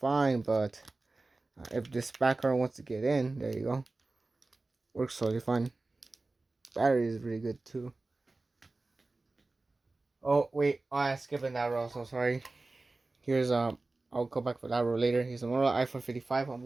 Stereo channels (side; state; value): left; quieter; 3.3 dB